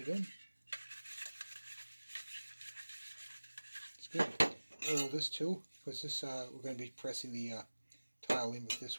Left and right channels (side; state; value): both; inverted; correlation -1.00